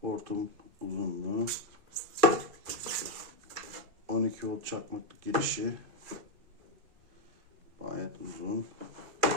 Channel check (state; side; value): late; left; 2.4 ms